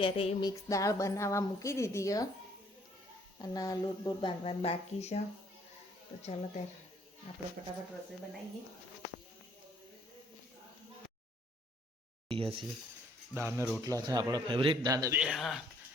મિક્સ દાળ બનાવવા મૂકી દીધી. અને લોટ બોટ બાંધવાનું બાકી છે. તો ચાલો ત્યારે આપણે ફટાફટ રસોઈ બનાવીએ. દાળ ને રોટલા છે આપણા ફેવરેટ. દાદા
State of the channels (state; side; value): normal; both; correlation 0.64